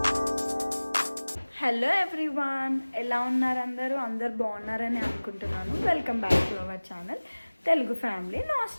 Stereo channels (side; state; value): both; inverted; correlation -1.00